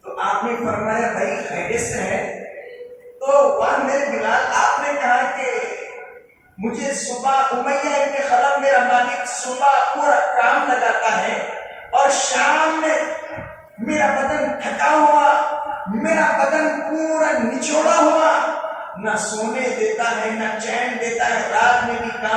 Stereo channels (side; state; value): both; identical; correlation 1.00